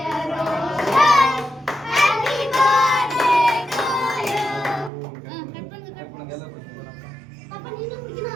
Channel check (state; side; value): drops out; left; at 4.9 s